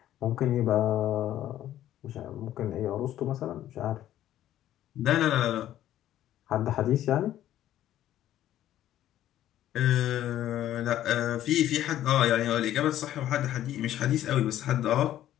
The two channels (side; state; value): right; quieter; 12.5 dB